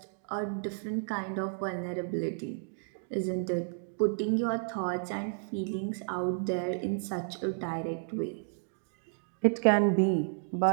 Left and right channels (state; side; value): silent; left; digital silence